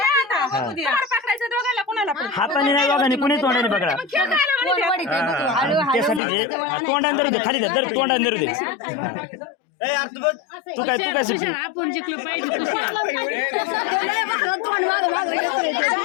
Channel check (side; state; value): right; drops out; at 6.2 s